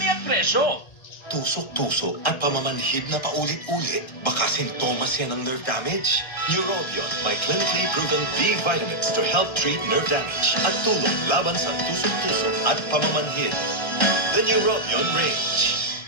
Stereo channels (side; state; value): right; late; 1.3 ms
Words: at presyo. Tusok-tusok at pamamanhid na paulit-ulit. Baka sintomas yan ng nerve damage. Neurobion may clinically proven B vitamins to help treat nerve damage at tulong laban sa tusok-tusok at pamamanhid. The Neurobion range.